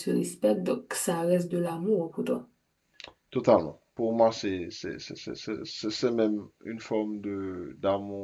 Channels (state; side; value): identical; both; correlation 1.00